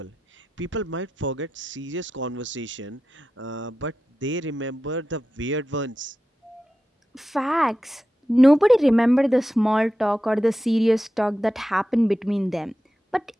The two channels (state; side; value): normal; both; correlation 0.92